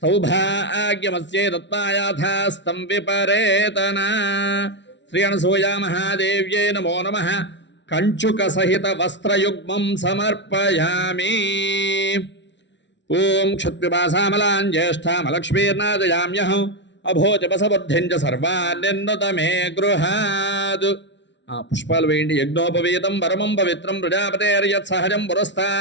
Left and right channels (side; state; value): right; late; 0.52 ms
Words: సౌభాగ్యమస్యై దత్తాయాథాస్తం విపరేతన శ్రీ అనసూయా మహాదేవ్యై నమో నమః కంచుక సహిత వస్త్రయుగ్మం సమర్పయామి ఓం క్షత్పిపాసామలాం జ్యేష్ఠామలక్ష్మీర్నాదయామ్యహం అభోజపసబుద్ధిం చ సర్వాన్ నిర్నుత మే గృహాద్ పుష్పాలు వేయండి యజ్ఞోపవీతం పరమం పవిత్రం ప్రజాపతేర్యత్ సహజం